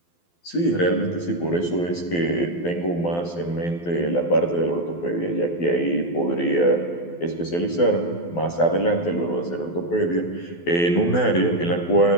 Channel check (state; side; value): late; right; 12 ms